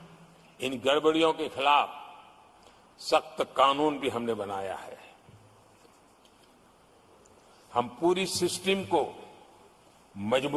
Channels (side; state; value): both; identical; correlation 1.00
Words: इन गड़बड़ियों के खिलाफ सख्त कानून भी हमने बनाया है। हम पूरी सिस्टम को